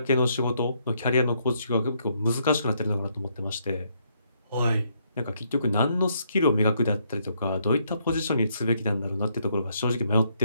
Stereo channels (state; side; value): inverted; both; correlation -0.73